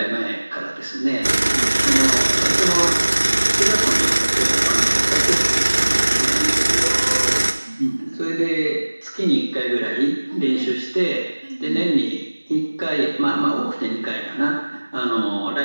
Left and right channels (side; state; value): both; inverted; correlation -1.00